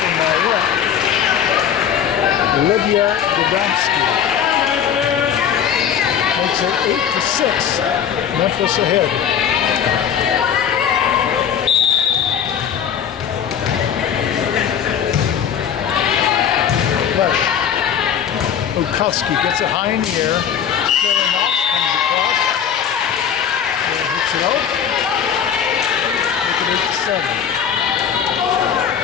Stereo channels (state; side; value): quieter; right; 8.5 dB